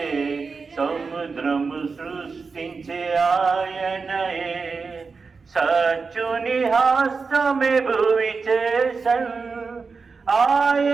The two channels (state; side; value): quieter; left; 4.7 dB